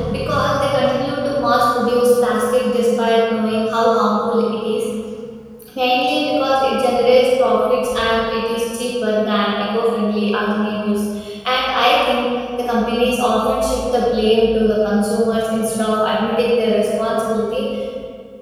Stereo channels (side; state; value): both; identical; correlation 1.00